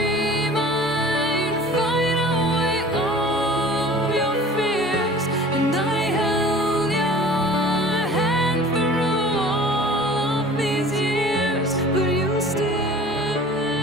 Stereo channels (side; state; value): both; normal; correlation 0.44